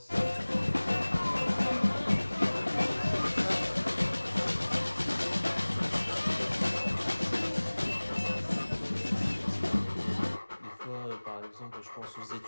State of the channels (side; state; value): both; inverted; correlation -1.00